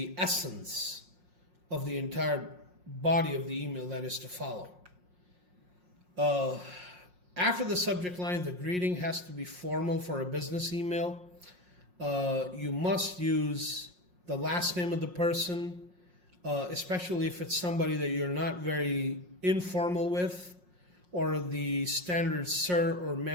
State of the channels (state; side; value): late; left; 5.6 ms